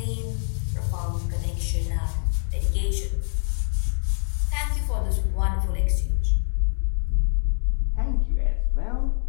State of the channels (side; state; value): right; silent; digital silence